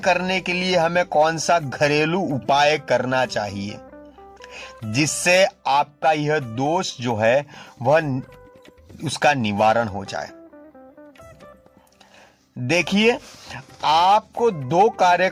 के लिए हमें कौन सा घरेलू उपाय करना चाहिए जिससे आपका यह दोष जो है वह उसका निवारण हो जाए? देखिए, आपको 2 कार्य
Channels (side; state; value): both; identical; correlation 1.00